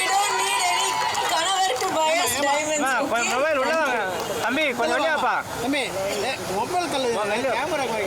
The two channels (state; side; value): identical; both; correlation 1.00